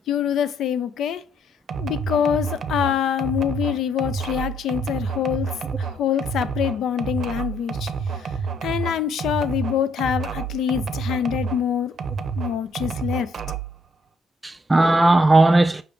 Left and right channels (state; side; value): normal; both; correlation 0.70